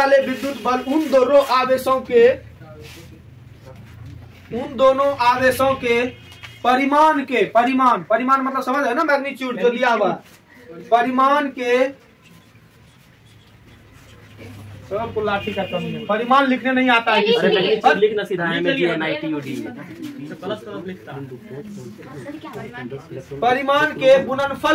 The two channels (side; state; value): both; identical; correlation 1.00